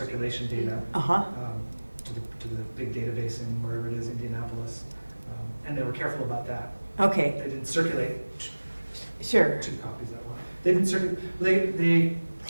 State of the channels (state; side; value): inverted; both; correlation -1.00